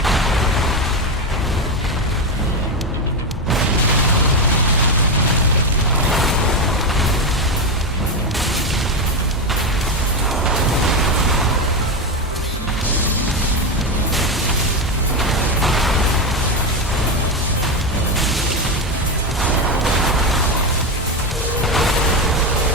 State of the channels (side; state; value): both; normal; correlation 0.13